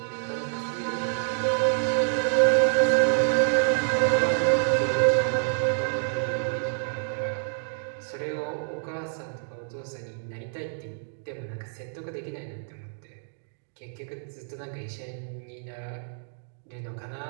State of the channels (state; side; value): silent; left; digital silence